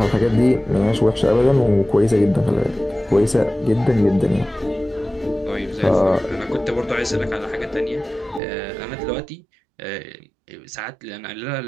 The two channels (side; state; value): left; drops out; at 8.4 s